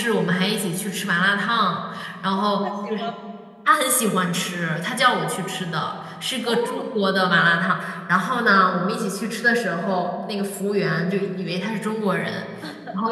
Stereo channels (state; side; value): identical; both; correlation 1.00